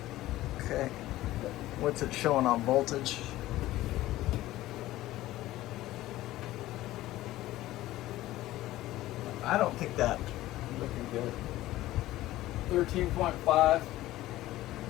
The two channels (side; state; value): right; quieter; 15.9 dB